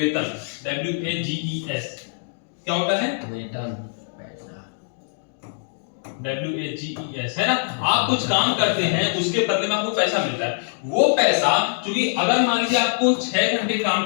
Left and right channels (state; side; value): silent; right; digital silence